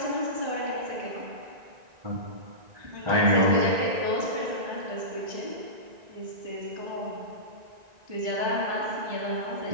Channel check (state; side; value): late; left; 1.9 ms